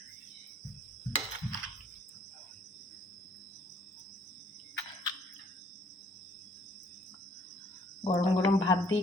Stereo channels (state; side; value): normal; both; correlation 0.61